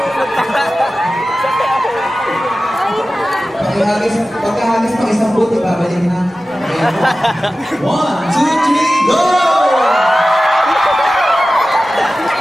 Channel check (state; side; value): normal; both; correlation 0.95